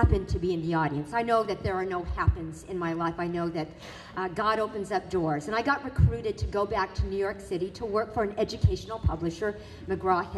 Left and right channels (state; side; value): identical; both; correlation 1.00